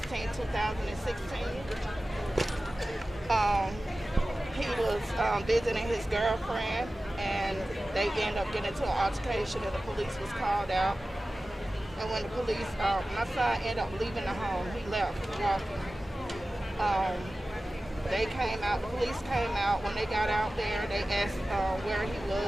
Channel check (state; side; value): normal; both; correlation 0.96